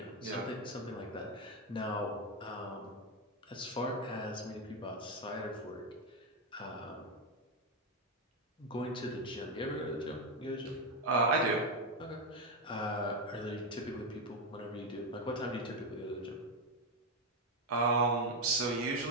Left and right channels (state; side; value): normal; both; correlation 0.07